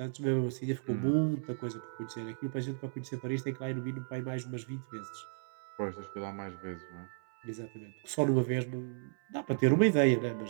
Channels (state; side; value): silent; left; 55 dB below the other